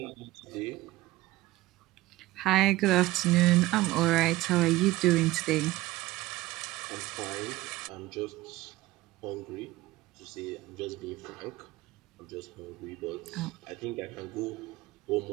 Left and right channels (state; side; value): quieter; left; 17.6 dB